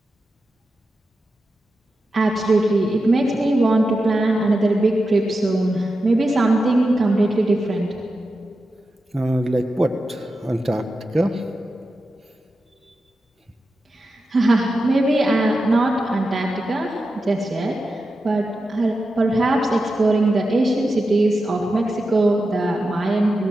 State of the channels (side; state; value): both; normal; correlation 0.90